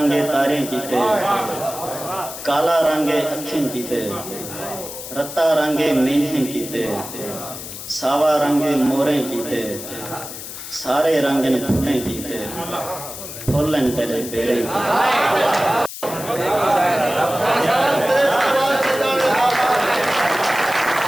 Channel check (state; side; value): noise; left; hiss, 10 dB below the sound